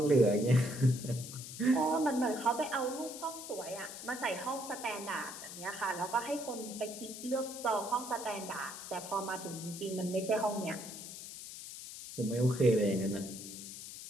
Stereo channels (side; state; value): left; noise; hiss, 11 dB below the sound